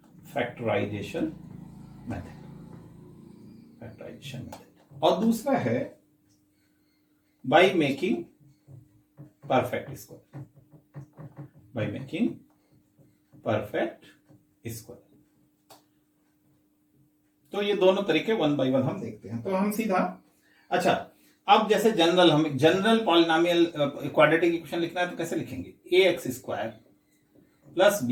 मेथड, और दूसरा है बाय मेकिंग परफेक्ट स्क्वायर। तो ये दोनों तरीके 1 बाय 1 हम देखते हैं। तो हम सीधा अच्छा, अब जैसे जनरल पॉलिनोमियल क्वाड्रेटिक इक्वेशन लिखना है तो कैसे लिखेंगे? ax square plus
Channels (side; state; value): both; identical; correlation 1.00